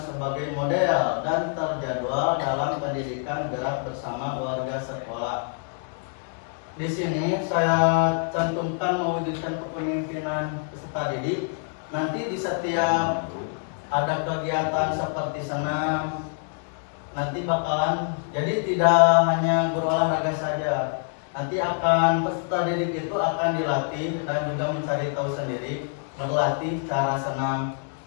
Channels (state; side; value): silent; right; 57 dB below the other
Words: model dan terjadwal dalam pendidikan gerak bersama warga sekolah. Di sini saya cantumkan mewujudkan kepemimpinan peserta didik. Nanti di setiap ada kegiatan seperti senam, nanti bakalan, jadi tidak hanya berolahraga saja. Nanti akan peserta didik itu akan dilatih dan juga mencari tahu sendiri, berlatih cara senam.